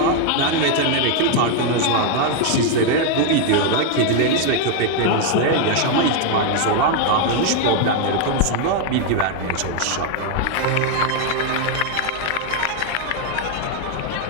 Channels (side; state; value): both; different; correlation 0.00